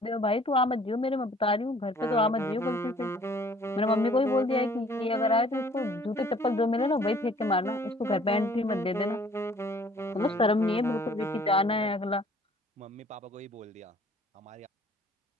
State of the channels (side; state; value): both; normal; correlation 0.56